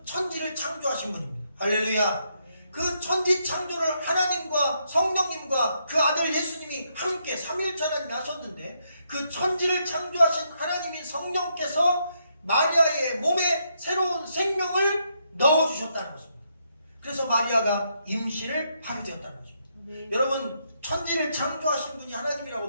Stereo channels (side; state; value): both; inverted; correlation -0.77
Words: 천지를 창조하신 분입니다. 할렐루야. 그 천지 창조를 하나님과 성령님과 그 아들 예수님이 함께 삼위일체 하나님이 하셨는데 그 천지를 창조하신 하나님인 성령께서 마리아의 몸에 새로운 생명을 넣어주셨다는 것입니다. 그래서 마리아가 임신을 하게 되었다는 것입니다. 여러분 천지를 창조하신 분이